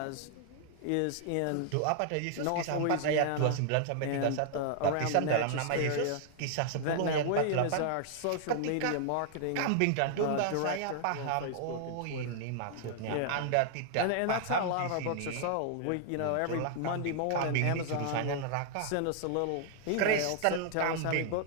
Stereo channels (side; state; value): both; different; correlation -0.01